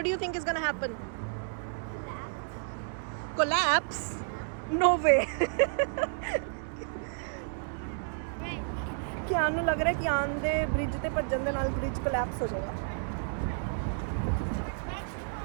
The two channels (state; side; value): silent; left; digital silence